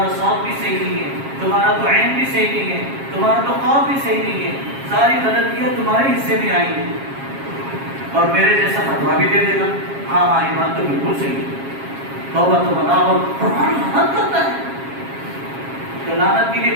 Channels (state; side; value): late; left; 7.4 ms